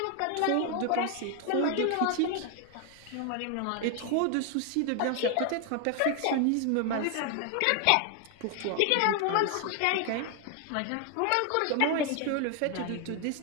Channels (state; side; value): different; both; correlation 0.00